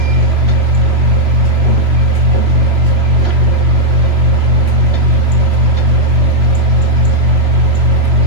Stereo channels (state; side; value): late; left; 3.0 ms